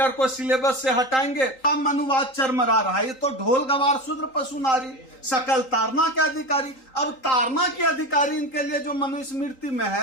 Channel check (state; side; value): late; right; 3.8 ms